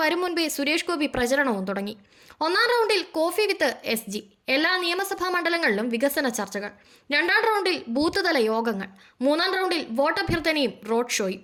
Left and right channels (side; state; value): both; identical; correlation 1.00